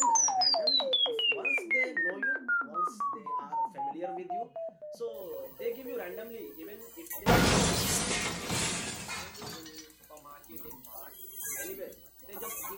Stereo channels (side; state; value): both; identical; correlation 1.00